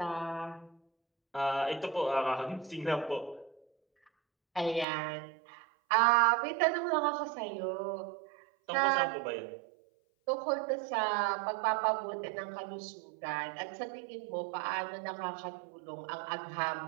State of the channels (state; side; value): drops out; left; at 4.9 s